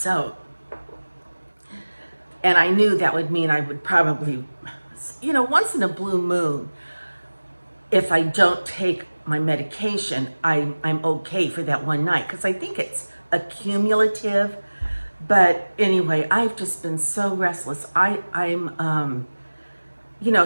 and I knew that would mean I would probably, once in a blue moon, if I don't take my medication, I'm okay for that one night, because I think it's accumulative. But anyway, I've just been so restless. I'm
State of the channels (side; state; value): both; inverted; correlation -1.00